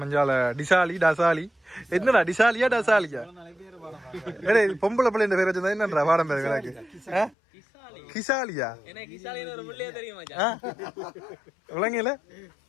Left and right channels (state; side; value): drops out; right; at 7.4 s